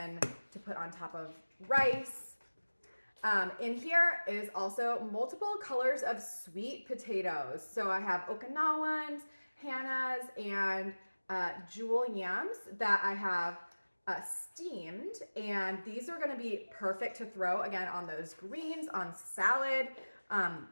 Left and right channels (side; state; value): both; inverted; correlation -1.00